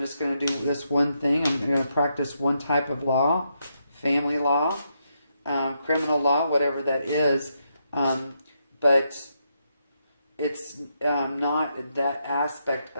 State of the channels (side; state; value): both; inverted; correlation -0.80